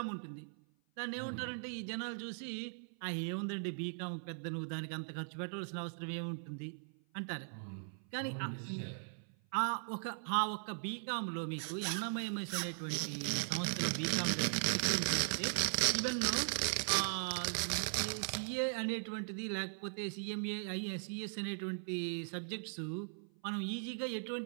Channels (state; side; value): silent; left; 52 dB below the other